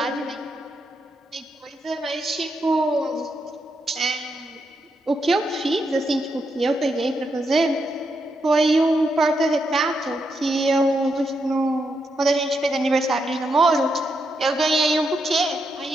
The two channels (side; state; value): both; normal; correlation 0.82